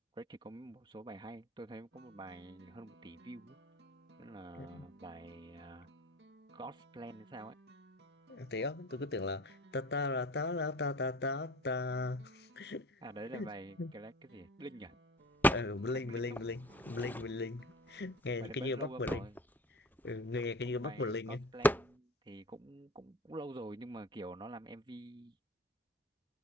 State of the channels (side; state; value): both; normal; correlation 0.40